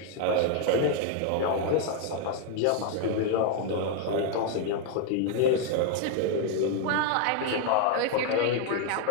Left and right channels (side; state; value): both; different; correlation 0.00